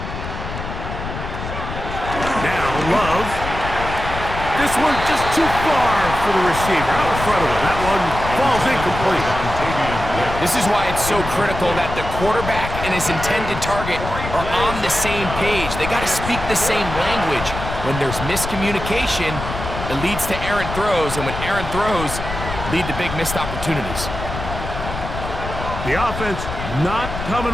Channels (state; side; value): noise; left; rumble, 7 dB below the sound